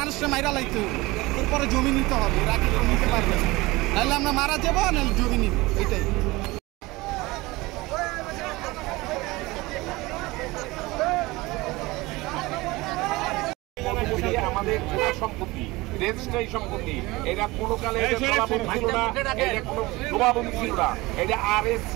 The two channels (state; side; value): quieter; left; 21.4 dB